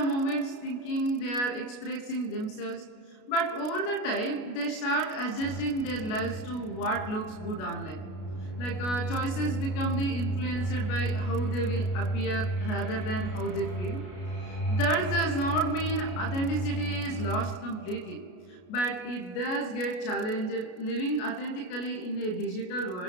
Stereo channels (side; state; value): right; late; 33 ms